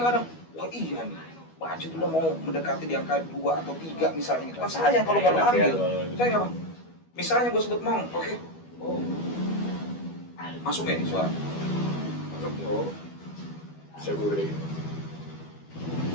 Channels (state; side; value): late; right; 12 ms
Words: wah iya nih, budget udah mau mendekati di angka 2 atau 3 misalnya gitu. Kan sayang kalau baru ambil. Sayang apa? Misalnya gue sebut mau, oke. Oh. Masuk ya nih suara? Masuk lo. Bisa gue gede.